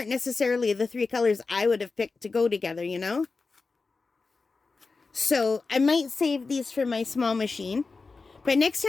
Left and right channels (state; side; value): quieter; right; 4.1 dB